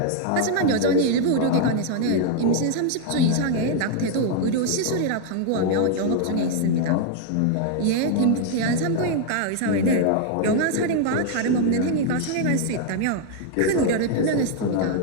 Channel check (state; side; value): different; both; correlation 0.00